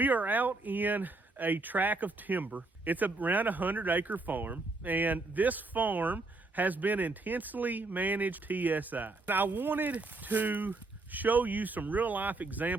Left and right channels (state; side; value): quieter; left; 3.3 dB